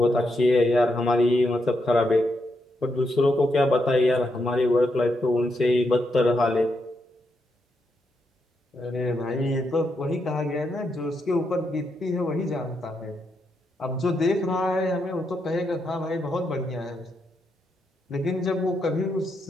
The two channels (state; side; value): normal; both; correlation 0.81